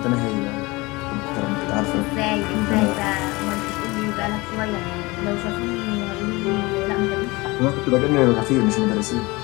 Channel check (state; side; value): quieter; right; 23.2 dB